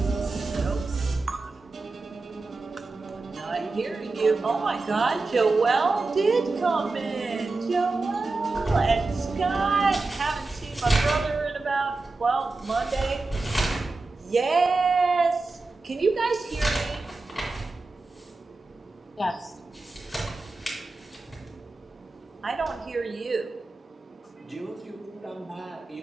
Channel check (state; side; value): quieter; left; 3.5 dB